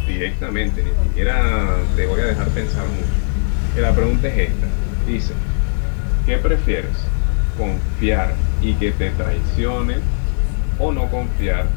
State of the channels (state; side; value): silent; right; digital silence